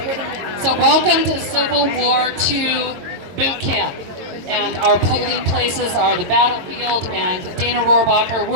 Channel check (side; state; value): left; late; 22 ms